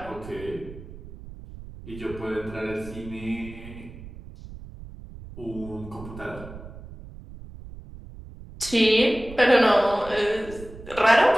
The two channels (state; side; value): noise; right; rumble, 15 dB below the sound